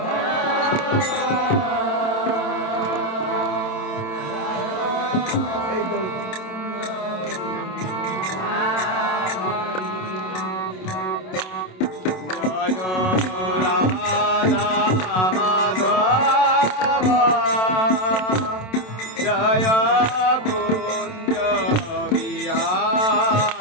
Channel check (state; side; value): late; right; 27 ms